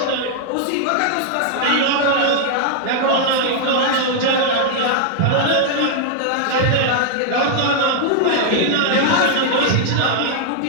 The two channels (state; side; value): different; both; correlation -0.01